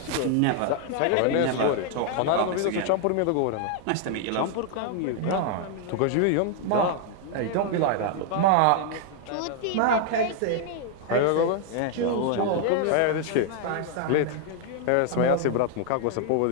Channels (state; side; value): different; both; correlation 0.00